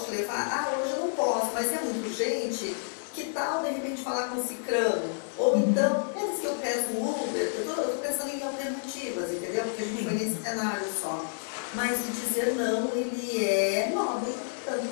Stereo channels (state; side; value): silent; right; digital silence